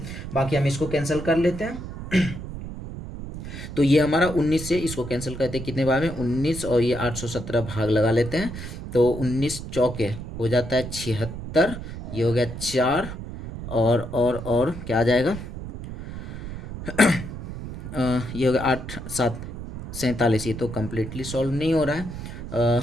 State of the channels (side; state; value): right; noise; rumble, 9 dB below the sound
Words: बाकी हम इसको कैंसिल कर लेते हैं तो ये हमारा 19 से इसको कैंसिल करते हैं कितने बार में 19, और ये 817 भाग लगा लेते हैं, तो 19 चौके हो जाता है 76, ये हो गया 4, और क्या आ जाएगा ये हो गया 8 7 47। ये तो कम्प्लीटली सॉल्व नहीं हो रहा है।